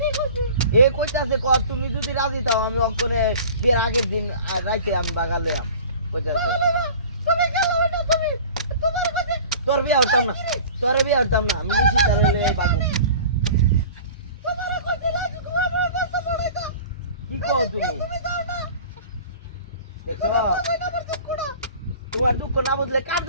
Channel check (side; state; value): both; inverted; correlation -0.42